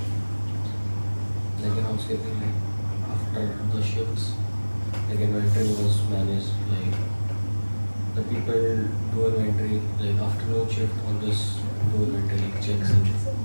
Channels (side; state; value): both; inverted; correlation -1.00